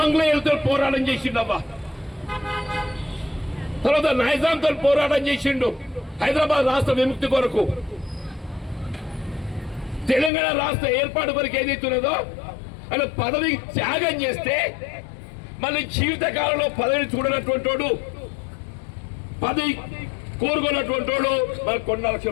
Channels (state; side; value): drops out; right; at 10.3 s